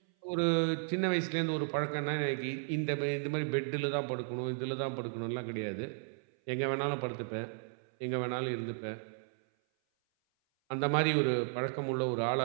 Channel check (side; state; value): left; silent; 55 dB below the other